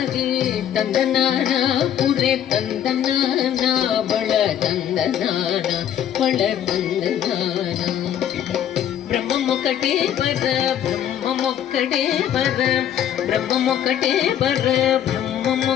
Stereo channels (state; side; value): quieter; right; 10.2 dB